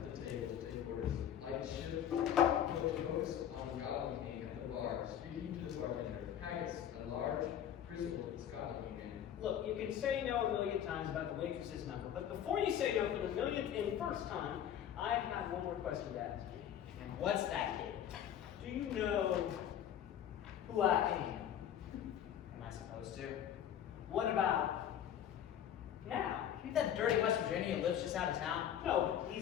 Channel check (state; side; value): quieter; right; 10.0 dB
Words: the table to take orders. Light shift, focus on the Scotland king at the bar, speaking to the bartender. Haggis, a large, grizzled Scotland king man. Look, you can say no a million times about the waitress's number, but before you say no for the millionth and first time, I have one more question to ask you. And what's that, kid? Do you know who I am? Am I supposed to? What about now? You that dirty West Virginia who lives just out of town? No, but